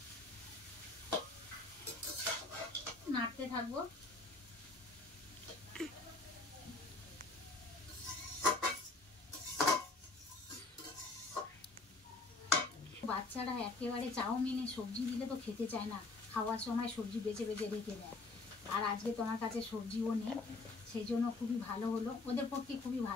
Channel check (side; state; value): right; quieter; 3.4 dB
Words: নাড়তে থাকবো। বাচ্চারা একেবারে চাউমিনে সবজি দিলে তো খেতে চায় না, খাওয়ার সময় সবজি বেছে বেছে রেখে দেয়। আর আজকে তোমার কাছে সবজিও নেই, সেই জন্য খুবই ভালো হলো, ওদের পক্ষে খুবই